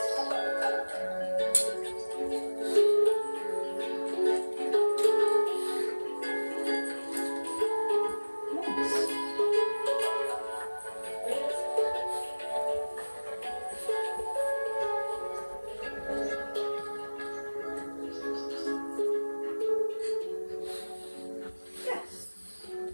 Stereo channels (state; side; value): inverted; both; correlation -1.00